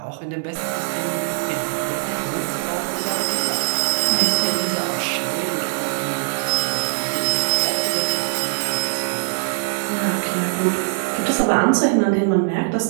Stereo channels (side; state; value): left; silent; digital silence